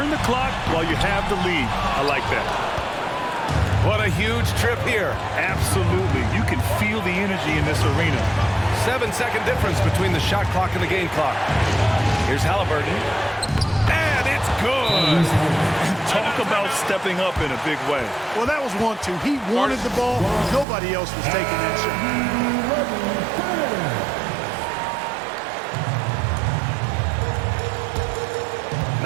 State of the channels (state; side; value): drops out; left; at 20.7 s